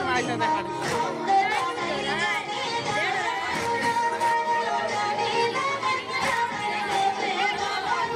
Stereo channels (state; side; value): identical; both; correlation 1.00